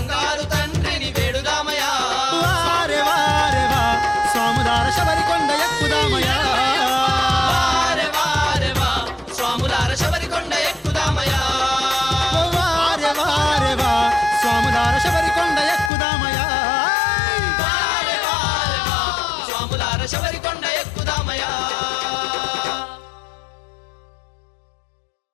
తండ్రిని వేడుదామయా వారే వారే వా స్వాములార శబరికొండ ఎక్కుదామయా వారే వారే వా స్వాములార శబరికొండ ఎక్కుదామయా వారే వారే వా స్వాములార శబరికొండ ఎక్కుదామయా వారే వారే వా స్వాములార శబరికొండ ఎక్కుదామయా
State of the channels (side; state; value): right; drops out; at 15.9 s